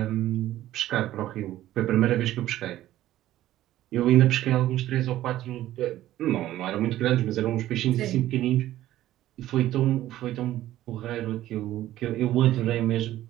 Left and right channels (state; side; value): quieter; left; 14.1 dB